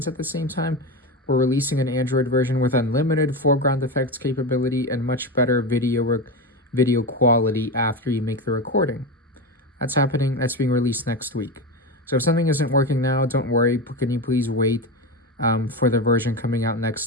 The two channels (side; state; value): both; normal; correlation 0.19